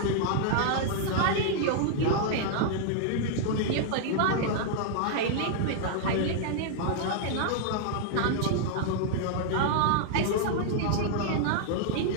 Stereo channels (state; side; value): different; both; correlation -0.01